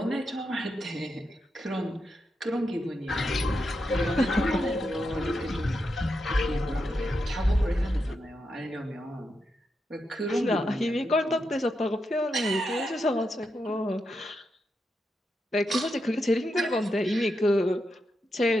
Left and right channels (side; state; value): both; normal; correlation 0.85